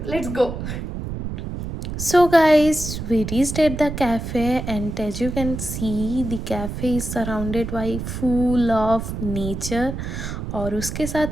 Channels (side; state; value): right; noise; rumble, 6 dB below the sound